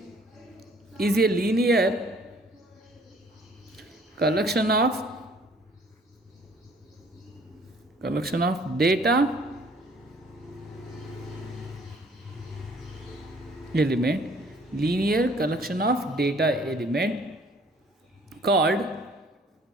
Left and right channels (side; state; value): both; normal; correlation 0.57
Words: is a linear collection of data element, linear collection of data element called